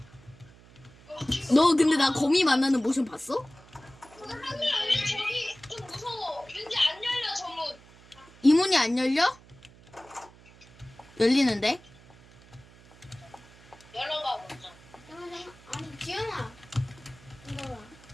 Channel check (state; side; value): noise; right; hum, 24 dB below the sound